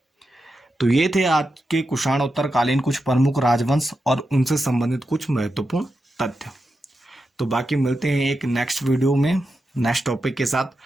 तो ये थे आज के कुषाणोत्तरकालीन कुछ प्रमुख राजवंश और उनसे संबंधित कुछ महत्वपूर्ण तथ्य। तो बाकी मिलते हैं एक नेक्स्ट वीडियो में नेक्स्ट टॉपिक के साथ,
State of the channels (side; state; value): both; normal; correlation 0.88